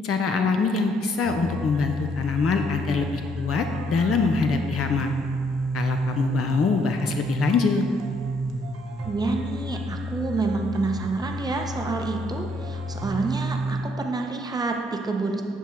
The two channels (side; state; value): both; normal; correlation 0.70